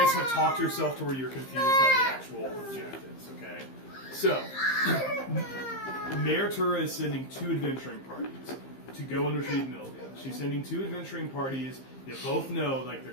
have talked yourself to where you're confused on the actual objectives. Okay. So Mayor Tura is sending 2 adventuring parties to go and retrieve Milvia. She's sending 2 adventuring parties that both know, like,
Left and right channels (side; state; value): right; late; 15 ms